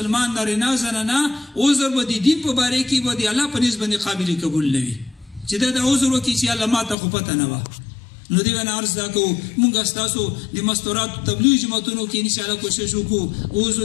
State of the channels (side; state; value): right; drops out; at 7.0 s